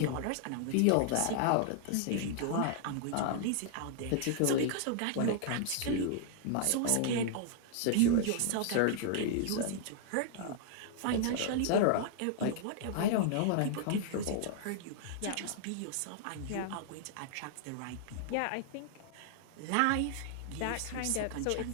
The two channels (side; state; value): both; different; correlation -0.01